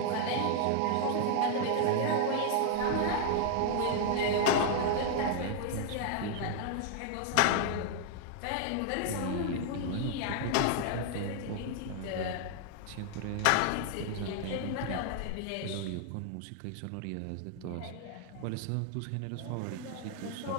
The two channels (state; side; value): different; both; correlation 0.00